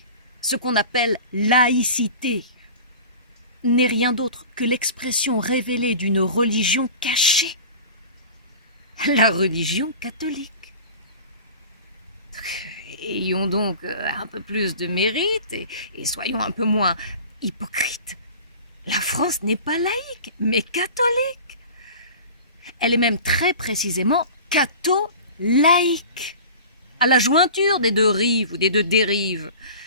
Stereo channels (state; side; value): inverted; both; correlation -0.38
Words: ce qu'on appelle laïcité n'est rien d'autre que l'expression révélée d'une religion cachée, la religion catholique. Ayons donc un peu plus de mérite et soyons un peu moins hypocrites. La France n'est pas laïque, mais catholique. Elle est même très précisément catho-laïque, à la jointure des deux rives ou des deux dérives,